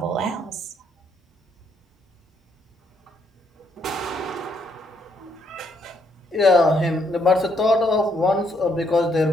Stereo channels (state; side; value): normal; both; correlation 0.72